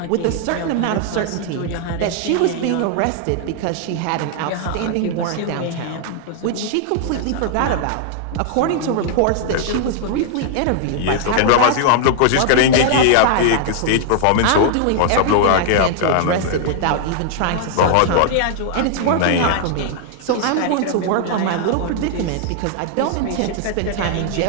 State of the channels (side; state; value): both; different; correlation 0.00